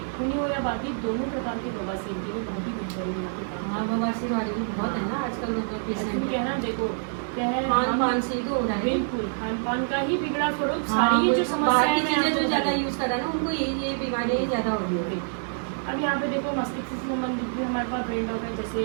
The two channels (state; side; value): silent; left; digital silence